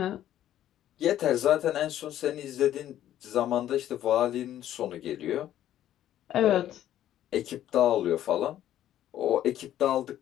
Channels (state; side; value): quieter; right; 12.1 dB